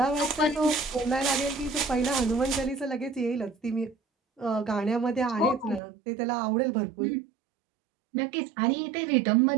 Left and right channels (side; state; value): left; drops out; at 5.8 s